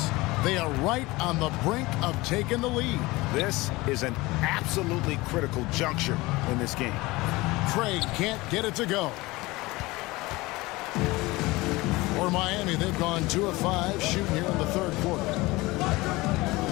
They are right on the brink of taking the lead. This is an absolutely critical juncture in this game. Craig can't get it to go. For Miami, they've gone 2 of 5 shooting here in the third quarter.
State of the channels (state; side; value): quieter; right; 21.3 dB